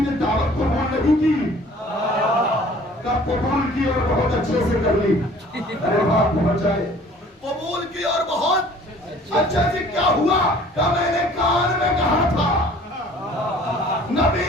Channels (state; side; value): normal; both; correlation 0.51